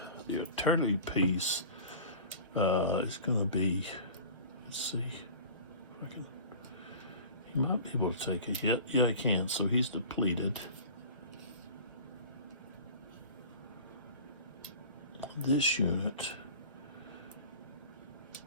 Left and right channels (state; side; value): inverted; both; correlation -0.40